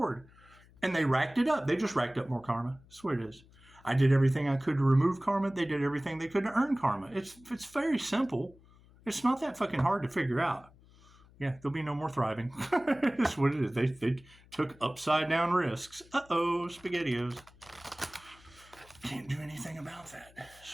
And they racked it up. They just racked up more karma. That's what it is. I did everything I could to remove karma. They did everything they could to earn karma. It's very simple. It's not that fucking hard to figure out. Yeah, there'll be no more thriving. That's what it is. They took upside down risks. Uh-oh, SpaghettiOs. Can't do anything about that.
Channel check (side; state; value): left; noise; hum, 26 dB below the sound